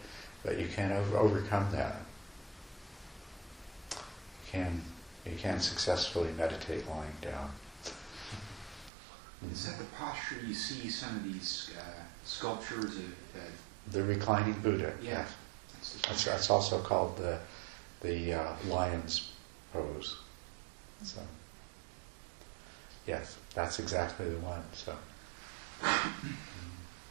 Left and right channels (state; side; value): drops out; left; at 8.9 s